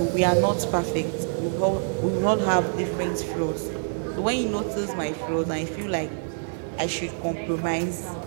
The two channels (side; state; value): left; silent; 61 dB below the other